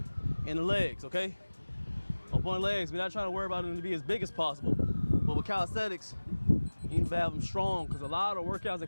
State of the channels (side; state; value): both; inverted; correlation -1.00